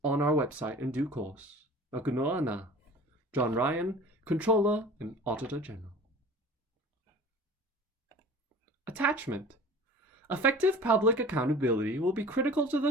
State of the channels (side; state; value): both; normal; correlation 0.42